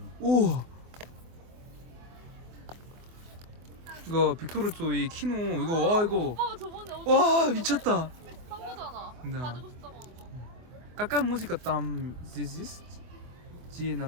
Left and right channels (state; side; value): late; left; 24 ms